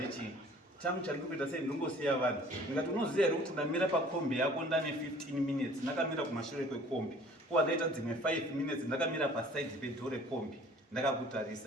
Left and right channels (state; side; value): normal; both; correlation 0.51